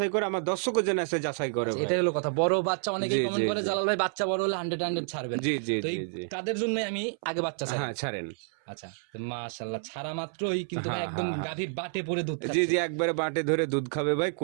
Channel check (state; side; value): silent; left; 58 dB below the other